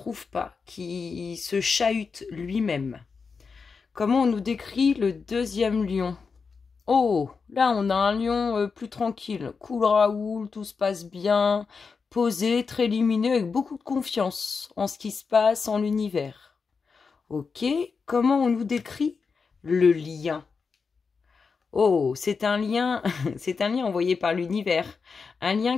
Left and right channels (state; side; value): quieter; right; 5.1 dB